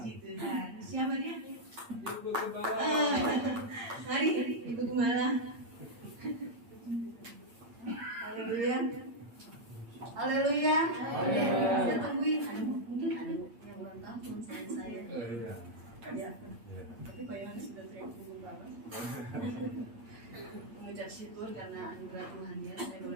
Tuhan. Siapa dia? Ibu Gembala. Mari Ibu Gembala. Haleluya. Haleluya. Saya tungguin. Mungkin ada yang ulang tahun selain saya. Iya. Ya. Tapi Pak Yohanes sudah teriak Ibu Gembala. Mengucap syukur karena anugerah Tuhan ya, saya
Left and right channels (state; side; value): late; left; 8.7 ms